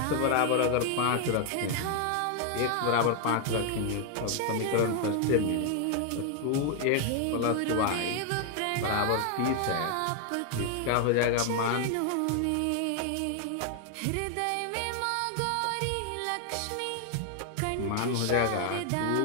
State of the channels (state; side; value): different; both; correlation 0.00